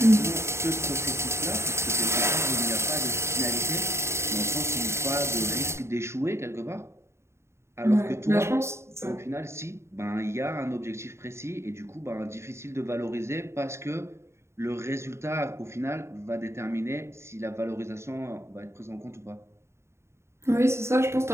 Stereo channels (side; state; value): left; late; 0.13 ms